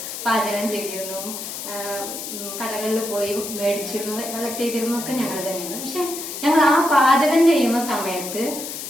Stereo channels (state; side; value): noise; left; hiss, 7 dB below the sound